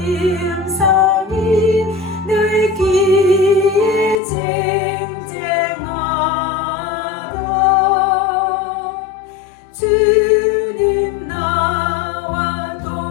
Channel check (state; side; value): drops out; right; at 4.2 s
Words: 음성이 늘 귀에 쟁쟁하다. 주님 나와